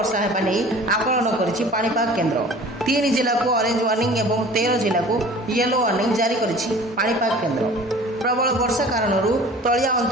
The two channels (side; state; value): both; normal; correlation 0.45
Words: हेबा नै आकलन करिछि पाणीपाग केन्द्र। 3 जिला को ऑरेंज वार्निंग एवं 13 जिला को येलो वार्निंग जारी करिछि पाणीपाग केन्द्र। प्रबल वर्षा कारण तलिया